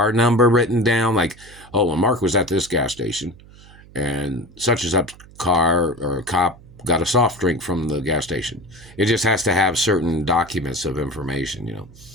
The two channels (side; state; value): right; noise; hum, 22 dB below the sound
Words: number written down. Like, oh, well, Mark was at this gas station and such and such car or cop got a soft drink from the gas station. It just has to have certain documents of information,